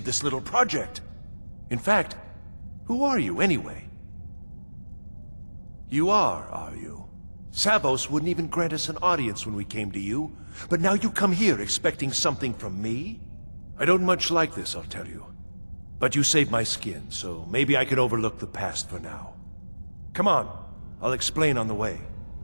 this little project. In fact, who are you anyway? You are you? Savos wouldn't even grant us an audience when we came to you, but now you come here expecting something from me? I don't much like this, I'll tell you. But you saved my skin, so maybe I can overlook the past for now. Come on, I'll explain on the way.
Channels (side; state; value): both; inverted; correlation -1.00